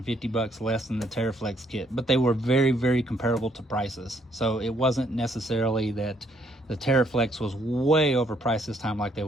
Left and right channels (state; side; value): normal; both; correlation 0.69